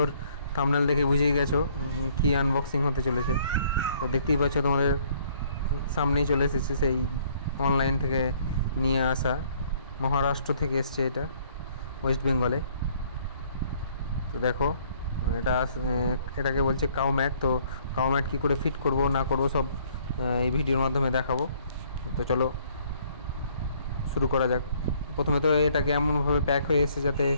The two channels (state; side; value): inverted; both; correlation -0.62